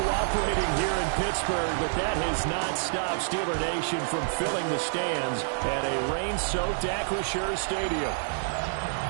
here in Pittsburgh, but that has not stopped Steeler Nation from filling the stands at a rain-soaked Acrisure Stadium.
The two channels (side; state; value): left; silent; 59 dB below the other